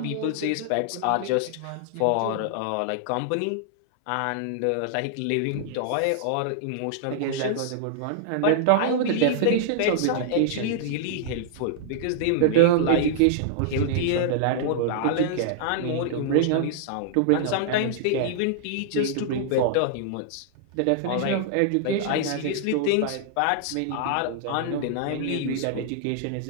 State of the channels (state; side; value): different; both; correlation -0.01